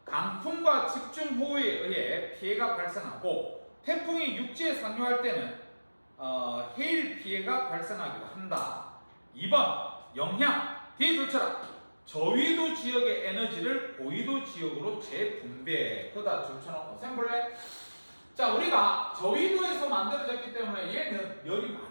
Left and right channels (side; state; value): both; inverted; correlation -1.00